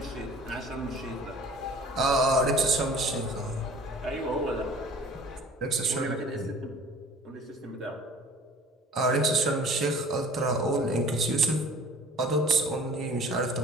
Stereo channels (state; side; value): normal; both; correlation 0.47